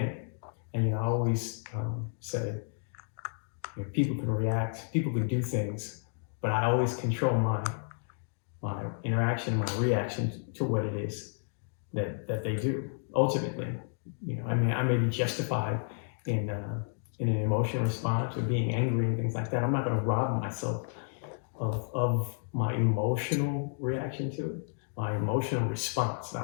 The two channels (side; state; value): right; silent; digital silence